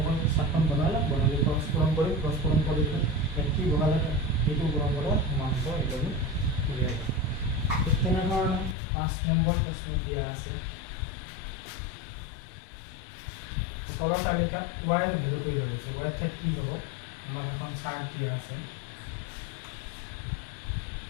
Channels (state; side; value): drops out; right; at 8.8 s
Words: সাতখন বনালে ক্ৰস পূৰণ কৰি কি বহালে এইটো গুণন কৰা সমান হ'ব এইটো উলিয়াই ঠিক তেনেধৰণে 5 নম্বৰ প্ৰশ্ন দিয়া আছে তলৰ তালিকাত y ৰ ভ্যালুটো দিয়া আছে y ঠাইত কি হ'ব আমাৰ এখন চাৰ্ট দিয়া আছে